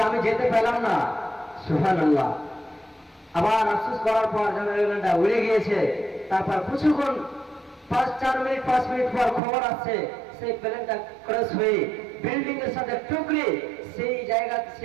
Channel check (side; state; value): left; drops out; at 9.4 s